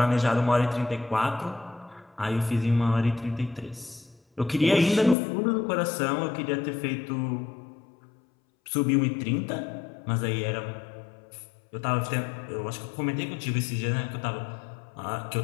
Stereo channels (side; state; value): right; drops out; at 5.2 s